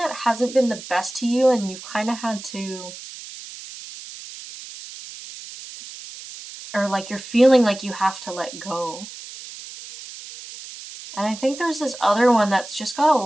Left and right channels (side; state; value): right; noise; hiss, 14 dB below the sound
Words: hasn't been the best to you and you've kind of had to, or like you're feeling like you have to let go. And I think there's this other one that's just got a